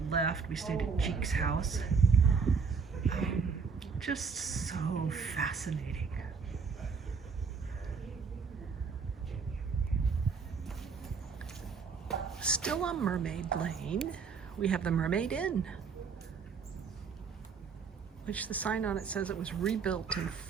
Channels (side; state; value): left; quieter; 5.6 dB